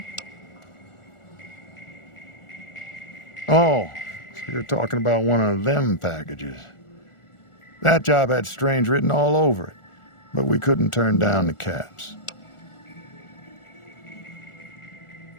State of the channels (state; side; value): late; right; 1.4 ms